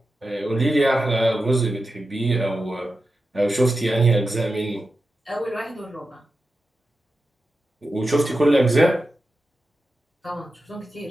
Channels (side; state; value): both; normal; correlation 0.91